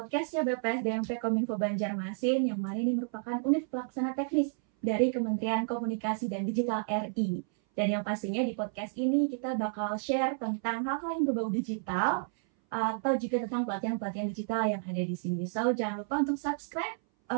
BPS DMP Kominfo Banjarmasin, yang mana ini merupakan unit pelaksana teknis dari Kementerian Komunikasi dan Digital RI. Dan yang pastinya di podcast ini kita bakal share tentang hal-hal yang berbau digital, atau juga tentang pelatihan-pelatihan digital yang ada di sini. So, jangan lupa untuk subscribe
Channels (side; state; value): left; silent; 57 dB below the other